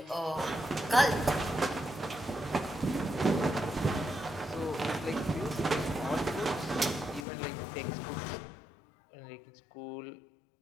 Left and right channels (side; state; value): right; drops out; at 7.2 s